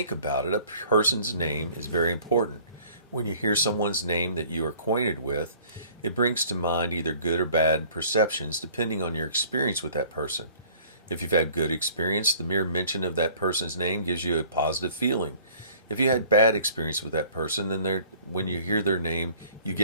about it, a person's name is very important. When you hear someone's name that you are acquainted with, it brings to mind either good or bad perceptions depending on your experience with that person. If you've had good experience, the mere mention of that person's name gives you a positive feeling. If you had bad experience with that person, then when you hear their name, you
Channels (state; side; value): inverted; both; correlation -0.53